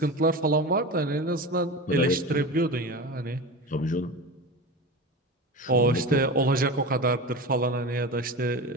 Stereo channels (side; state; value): both; normal; correlation 0.28